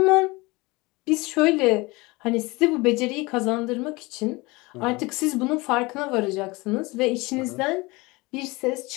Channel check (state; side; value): quieter; right; 23.7 dB